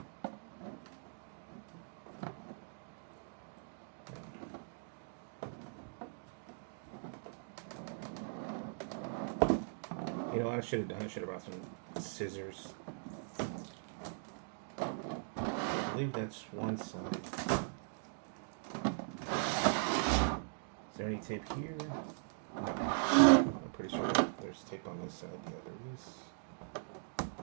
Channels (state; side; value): silent; left; digital silence